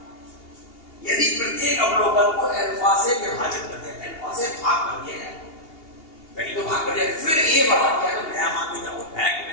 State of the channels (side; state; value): right; late; 2.8 ms